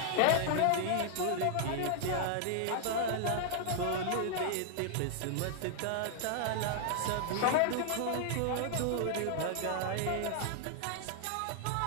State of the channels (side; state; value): both; different; correlation -0.01